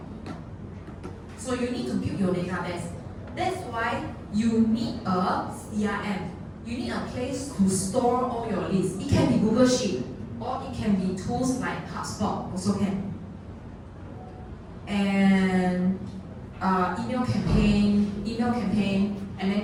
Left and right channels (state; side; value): identical; both; correlation 1.00